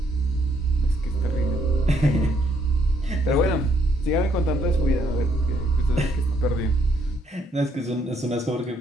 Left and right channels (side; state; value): both; normal; correlation 0.70